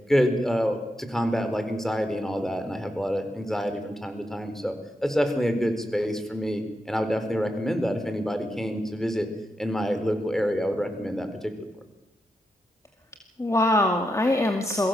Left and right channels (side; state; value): both; normal; correlation 0.85